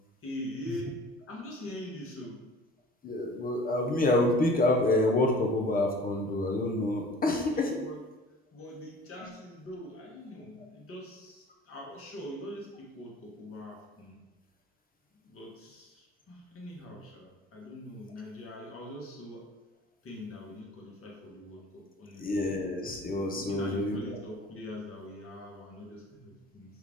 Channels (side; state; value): both; normal; correlation 0.47